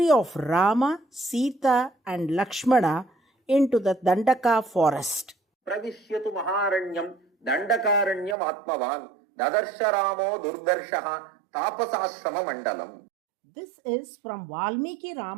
of Rama, Sita, and Lakshmana into the Dandaka forest. Pravishyatu Maharanyam Dandakaranyam Atmavan Dadarshya Ramo Durdarshaha Tapasashrama Mandalam. This is from Valmiki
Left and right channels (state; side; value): drops out; left; at 8.3 s